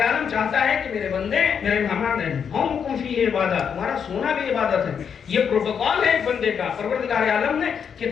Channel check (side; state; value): right; quieter; 7.2 dB